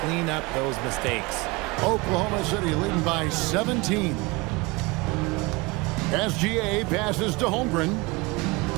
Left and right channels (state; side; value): quieter; left; 25.2 dB